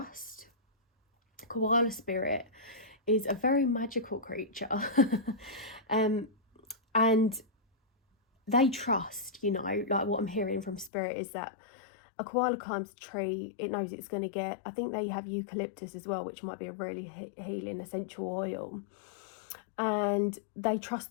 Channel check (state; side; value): drops out; right; at 10.9 s